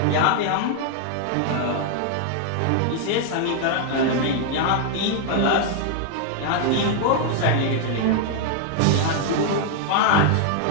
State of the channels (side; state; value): both; different; correlation 0.00